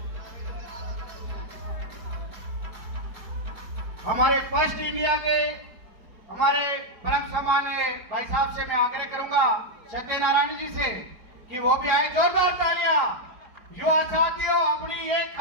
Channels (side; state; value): left; late; 4.8 ms